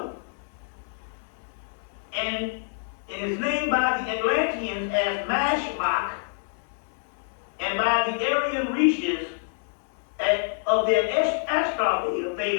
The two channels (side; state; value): right; silent; 57 dB below the other